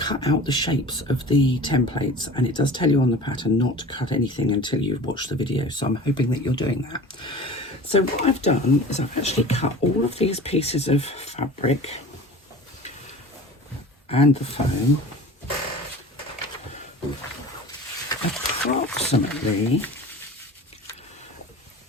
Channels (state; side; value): normal; both; correlation 0.39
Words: out the shapes of the templates, and it does tell you on the pattern not to cut anything until you've watched the video, so I'm hoping that you're doing that. So what I've done is I've actually cut all of these pieces of fabric and the foam approximately